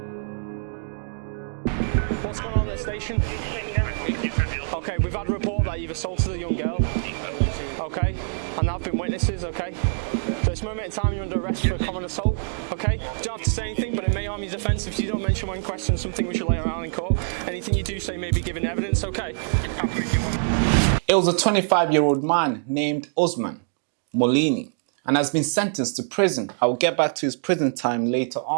What's going on at the station? Okay, we've had a report that you've assaulted a young girl. Okay, and there have been witnesses, okay? So this moment in time you're under arrest for a common assault, okay? You don't have to say anything, but it may harm your defence if you don't mention when questioned something we should lay around in court. Anything you do say may be given evidence, okay? It was a 25-year-old man named Usman Molini and has been sentenced to prison. I will get back to his prison time later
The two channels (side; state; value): left; silent; digital silence